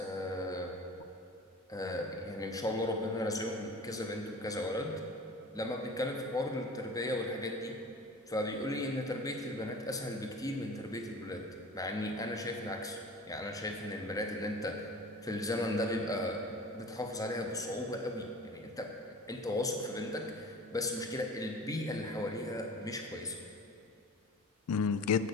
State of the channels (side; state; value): both; normal; correlation 0.40